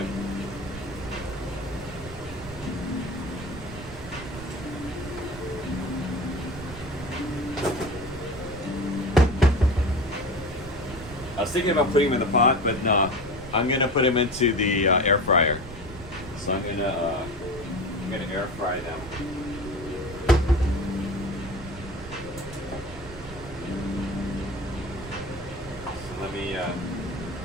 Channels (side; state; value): right; noise; rumble, 13 dB below the sound